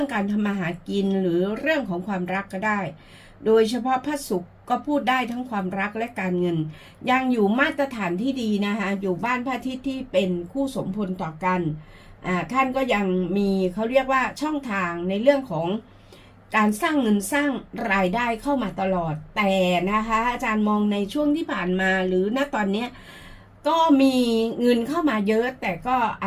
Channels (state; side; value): identical; both; correlation 1.00